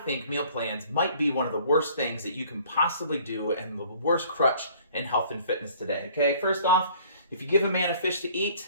meal plans might be one of the worst things that you can possibly do and the worst crutch in health and fitness today? Okay, first off, if you give a man a fish to eat,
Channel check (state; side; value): inverted; both; correlation -0.54